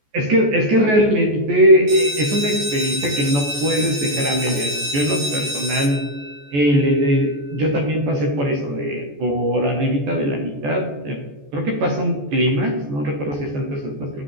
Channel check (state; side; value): late; left; 14 ms